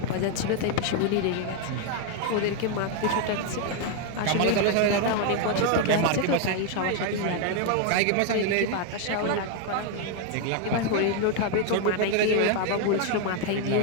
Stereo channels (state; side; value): different; both; correlation 0.01